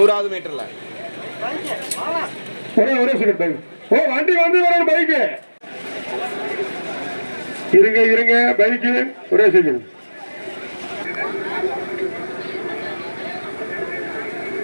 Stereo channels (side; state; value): both; inverted; correlation -1.00